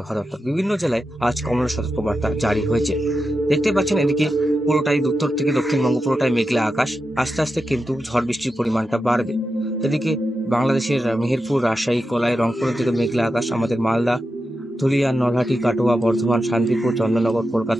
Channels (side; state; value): both; normal; correlation 0.89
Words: দপ্তর। বিভিন্ন জেলায় আজ কমলা সতর্কবার্তা জারি হয়েছে। দেখতে পাচ্ছেন এদিকে পুরোটাই উত্তর থেকে দক্ষিণবঙ্গ পুরোটাই মেঘলা আকাশ। আস্তে আস্তে কিন্তু ঝড় বৃষ্টির পরিমাণটা বাড়বে। এদিকে বাংলাদেশের মেহেরপুর, রাজশাহী, কলাই, রংপুরের দিকে মেঘলা আকাশ। আমাদের মালদা, ধুলিয়ান, নলহাটি, কাটোয়া, বর্ধমান, শান্তিপুর, চন্দননগর,